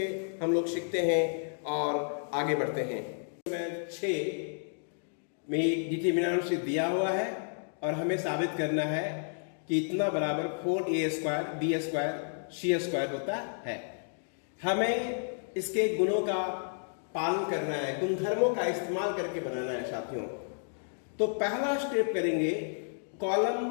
हम लोग सीखते हैं और आगे बढ़ते हैं। नंबर 6 में डिटरमिनेंट दिया हुआ है और हमें साबित करना है कि इतना बराबर 4a² b² c² होता है। हमें इसके गुणों का पालन करना है, गुणधर्मों का इस्तेमाल करके बनाना है साथियों। तो पहला स्टेप करेंगे, कॉलम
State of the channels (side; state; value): right; silent; digital silence